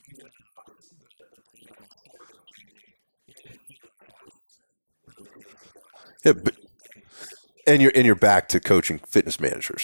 though I was the brand on my shirt was changing, it didn't feel like I was really changing jobs because it was the same leadership. And you're back to coaching fitness managers,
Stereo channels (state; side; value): inverted; both; correlation -1.00